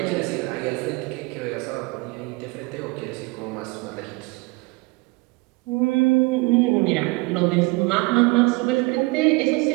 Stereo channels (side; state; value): left; quieter; 25.7 dB